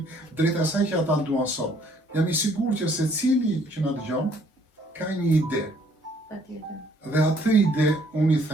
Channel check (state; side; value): normal; both; correlation 0.63